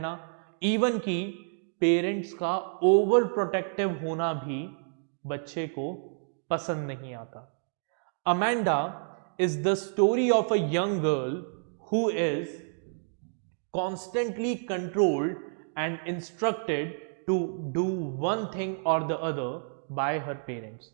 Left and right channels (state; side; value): silent; left; digital silence